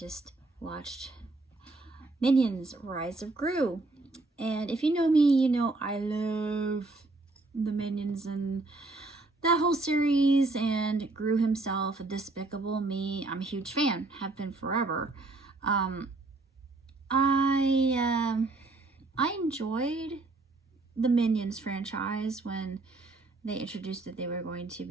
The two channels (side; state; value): left; quieter; 3.3 dB